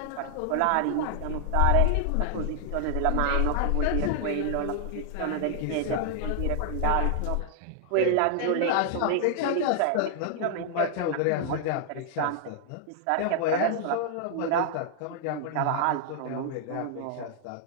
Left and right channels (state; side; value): different; both; correlation -0.01